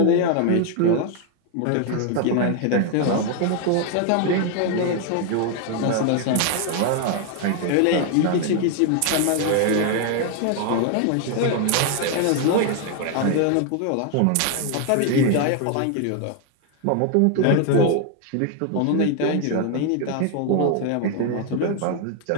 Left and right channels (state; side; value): different; both; correlation 0.00